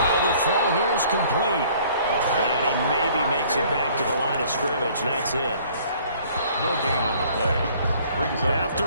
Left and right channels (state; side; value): inverted; both; correlation -0.56